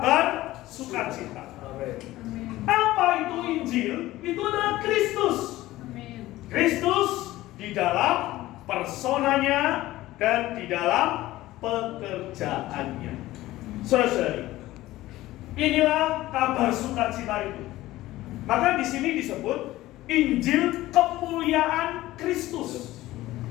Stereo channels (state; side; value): quieter; right; 16.7 dB